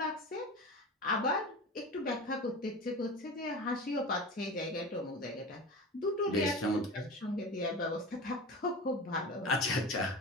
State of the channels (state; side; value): normal; both; correlation 0.30